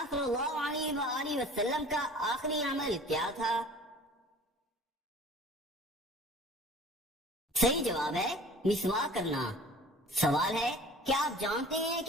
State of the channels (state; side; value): normal; both; correlation 0.46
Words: صلی اللہ علیہ وآلہ وسلم کا آخری عمل کیا تھا؟ صحیح جواب ہے، مسواک کرنا۔ سوال ہے، کیا آپ جانتے ہیں